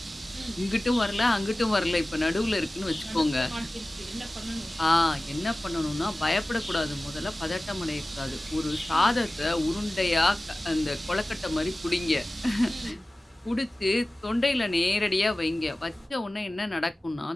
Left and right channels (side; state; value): both; normal; correlation 0.97